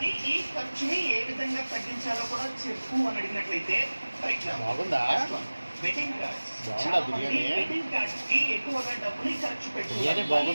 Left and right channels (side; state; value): both; inverted; correlation -1.00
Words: ఈ ఖర్చుని ఏ విధంగా తగ్గించాలో కూడా చెప్పు అని అడిగినట్లయితే, for example wedding cards, wedding cards కి ఎక్కువగా డబ్బుని ఖర్చు